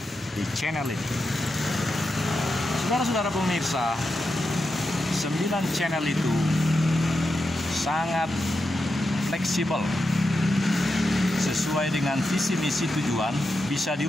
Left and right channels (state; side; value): normal; both; correlation 0.88